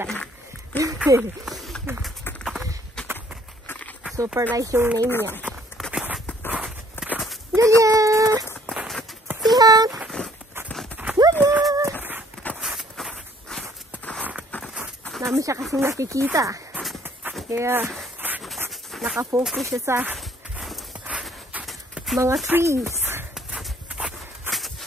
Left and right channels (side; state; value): both; normal; correlation 0.61